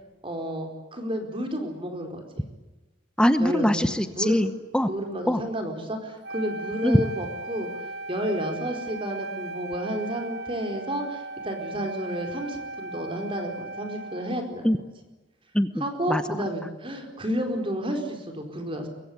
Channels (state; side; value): normal; both; correlation 0.68